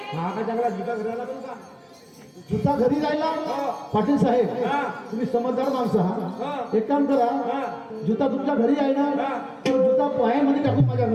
हा का चांगला जुता घराला पण का? जुता घरी राहिला पाटील साहेब हा. तुम्ही समजदार माणसं हा. हा एक काम करा हा. जुता तुमच्या घरी आहे ना हा. तो जुता पायामध्ये टाकून माझ्या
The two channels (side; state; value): both; identical; correlation 1.00